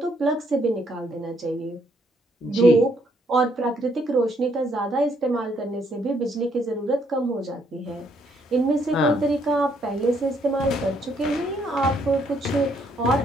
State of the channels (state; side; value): normal; both; correlation 0.70